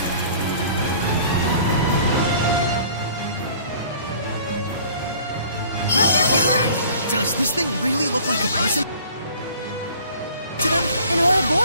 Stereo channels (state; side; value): inverted; both; correlation -0.50